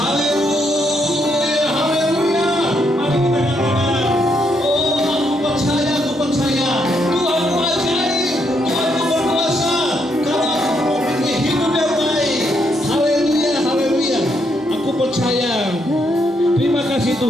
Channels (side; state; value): both; normal; correlation 0.76